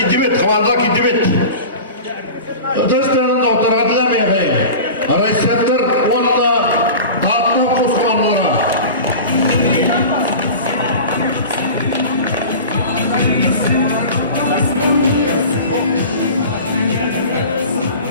komanda Kidibet. Öteşlerin doktora dilemeye efendim. Arayışlar onda dağıtma kuz komandolara.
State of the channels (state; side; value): inverted; both; correlation -0.35